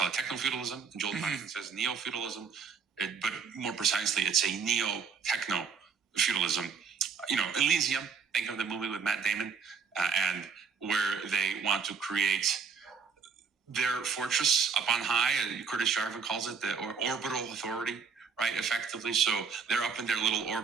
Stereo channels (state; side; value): quieter; left; 5.9 dB